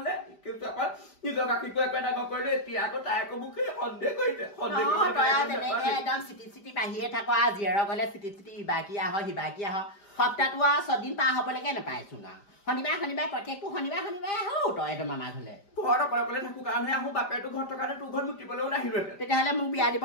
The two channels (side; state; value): right; late; 4.9 ms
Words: কিন্তু আকৌ নিজৰ গাখীৰটো একো ডাঙৰ কৰিলে এতিয়া আকৌ তাই আকৌ মোক সন্দেহ কৰিছে একদম চিটি বাঢ়িয়ে থাক আৰু জীয়েৰৰ গলে চিটি ইবাকি আহ সিবাকি আহ সপ্তাহটো আৰু 6 দিন পাৰ হবলৈকে নাপাইচোন আৰু শনিবাৰ প্ৰত্যেকটো শনিবাৰ আহো তই একদম আমাৰ ঘৰলে ঘৰত অকলে থাকো কাৰণেহে আহো বাপেৰটো ঘৰত থকানে তোৰ ঘৰত মুতিবলৈও নাহিলোহেঁতেন তেতিয়াহ'লে মোক বিয়া দিব